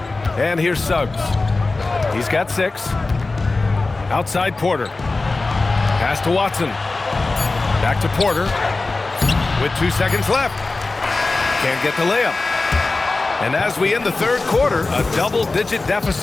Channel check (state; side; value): quieter; right; 3.5 dB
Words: And here's Suggs. He's got 6. Outside Porter. Pass to Watson. Back to Porter. With 2 seconds left. Can't get the layup. And as we end the third quarter, a double-digit